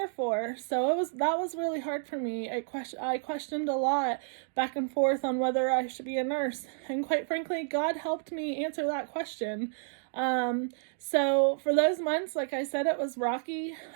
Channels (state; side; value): silent; left; digital silence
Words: for. So that was really hard for me. I questioned a lot back and forth on whether I should be a nurse. And quite frankly, God helped me answer that question. So for those months, like I said, it was rocky.